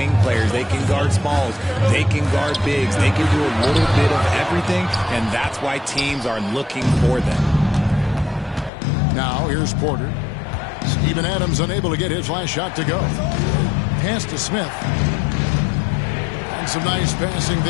players. They can guard smalls, they can guard bigs, they can do a little bit of everything, and that's why teams are looking for them. Now, here's Porter. Steven Adams unable to get his last shot to go. Pass to Smith. And some nice passing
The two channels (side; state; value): right; drops out; at 8.7 s